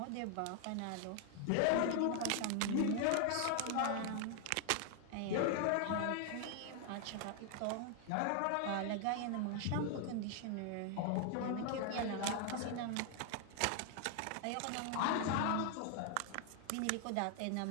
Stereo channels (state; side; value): different; both; correlation 0.00